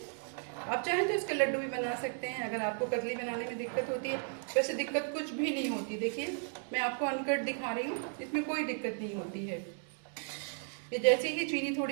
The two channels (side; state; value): left; silent; 55 dB below the other